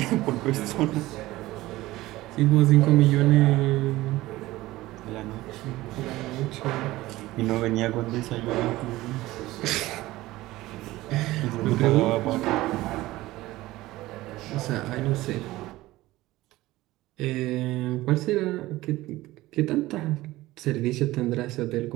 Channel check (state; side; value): quieter; left; 17.7 dB